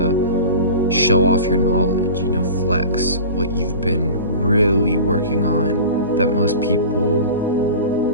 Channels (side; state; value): both; inverted; correlation -0.36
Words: show off your knowledge, you know, flex what you've been really working on that most people